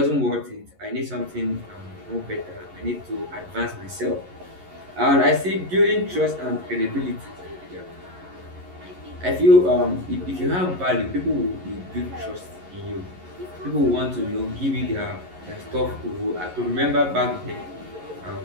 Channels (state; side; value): late; left; 11 ms